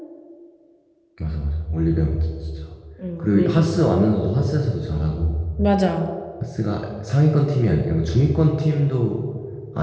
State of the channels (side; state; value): both; identical; correlation 1.00